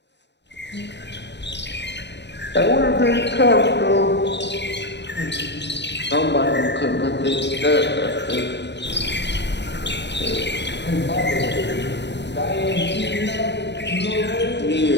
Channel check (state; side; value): late; right; 0.50 ms